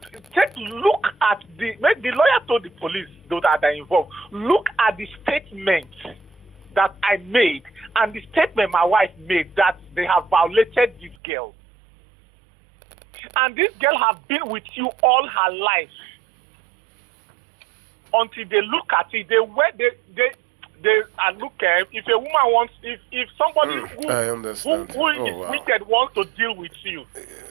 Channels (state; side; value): drops out; left; at 11.2 s